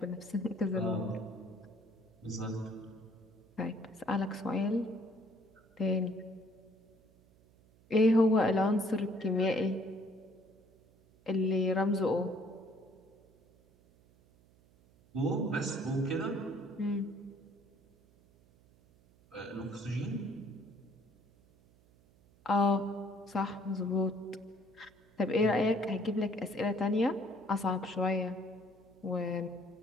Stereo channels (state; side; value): noise; right; hum, 29 dB below the sound